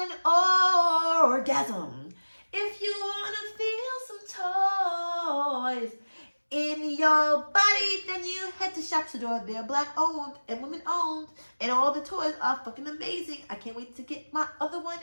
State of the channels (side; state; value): both; inverted; correlation -1.00